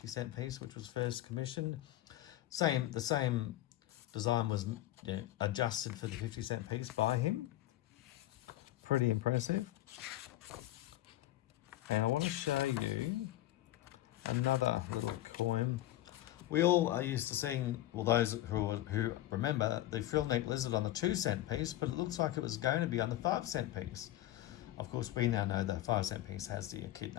piece, which was first commissioned. The same design was adjusted for the 50-cent piece by him. Pretty impressive. And I want to show you another little coin. We all are used to seeing, well, those who remember the frill neck lizard on the 2-cent piece, but it looks like it was going to be on the 5-cent piece. Of course, we now know the 5-cent piece has the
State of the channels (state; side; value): quieter; right; 14.8 dB